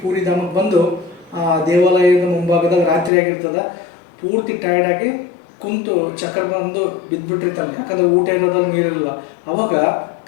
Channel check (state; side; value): drops out; right; at 3.1 s